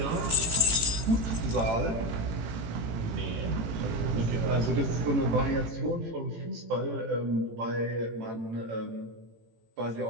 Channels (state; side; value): late; left; 18 ms